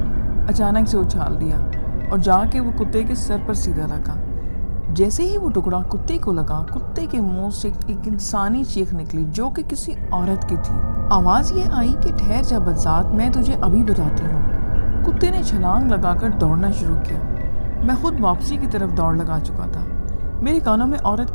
اچانک سے اچھال دیا اور جا کے وہ کتے کے سر پر سیدھا لگا۔ جیسے ہی وہ ٹکڑا کتے کو لگا، کتے کے منہ سے ایک انسانی چیخ نکلی جو کہ کسی عورت کی تھی۔ آواز یہ آئی کہ ٹھہر جا بدذات، میں تجھے ابھی بتاتی ہوں۔ کتے نے چھلانگ لگا کر دوڑنا شروع کیا۔ میں خود واپسی کی طرف دوڑ لگا چکا تھا۔ میرے کانوں میں عورت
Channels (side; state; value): both; inverted; correlation -1.00